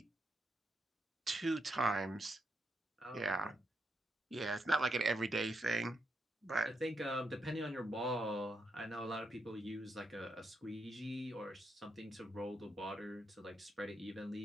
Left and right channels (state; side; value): normal; both; correlation 0.82